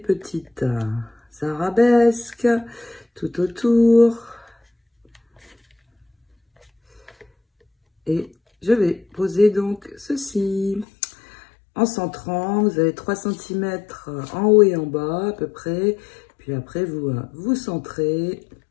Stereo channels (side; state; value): right; drops out; at 10.9 s